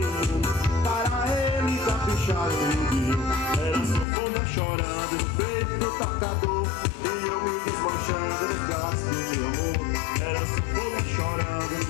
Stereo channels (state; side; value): drops out; right; at 4.0 s